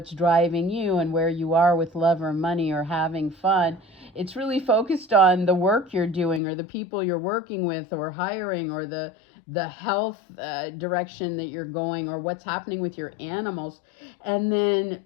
driving you and where you are with love or money or having fun, it's really focused on the work you're doing or the people you're working with or hiring or the health direction that you're going or what's happening with your animals. And then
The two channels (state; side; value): drops out; right; at 6.4 s